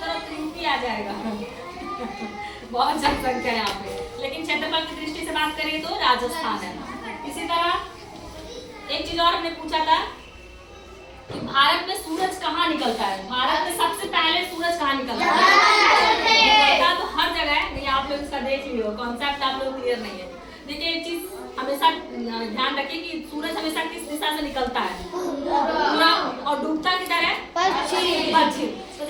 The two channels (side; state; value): both; identical; correlation 1.00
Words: करो तो यूपी आ जाएगा बहुत जनसंख्या है यहाँ पे, लेकिन क्षेत्रफल की दृष्टि से बात करें तो राजस्थान है। इसी तरह एक चीज और हमने पूछा था कि भारत में सूरज कहाँ निकलता है? भारत में सबसे पहले सूरज कहाँ निकलता है? तो हर जगह है, नहीं आप लोग इसका देख लियो, कॉन्सेप्ट आप लोग क्लियर नहीं है। देखिए एक चीज हमेशा ध्यान रखिए कि सूरज हमेशा किस दिशा से निकलता है? पूरा। और डूबता किधर है? पश्चिम। तो